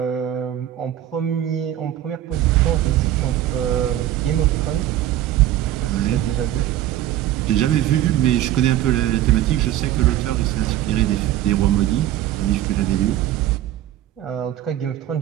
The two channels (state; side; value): quieter; left; 12.9 dB